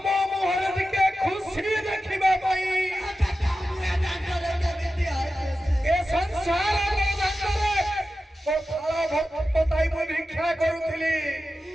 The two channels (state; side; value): normal; both; correlation 0.93